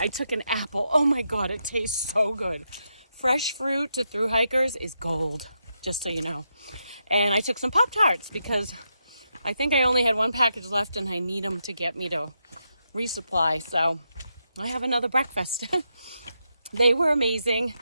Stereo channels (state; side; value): inverted; both; correlation -0.83